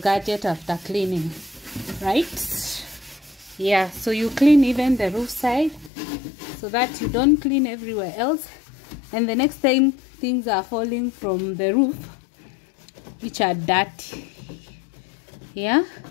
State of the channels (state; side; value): drops out; right; at 5.9 s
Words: after cleaning, right? Yeah, so you clean even the roof side so that you don't clean everywhere else, and the next time things are falling from the roof which are dirty. Yeah,